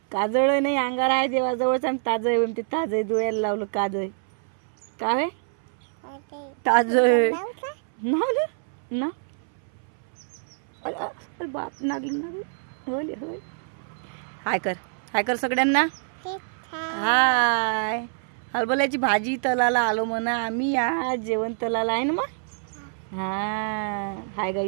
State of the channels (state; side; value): silent; left; 61 dB below the other